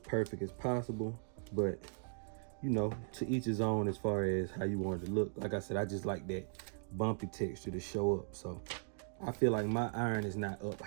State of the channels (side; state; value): left; silent; digital silence